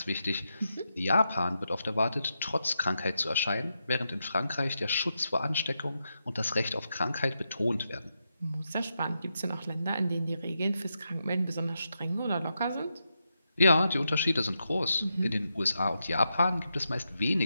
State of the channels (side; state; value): both; inverted; correlation -0.85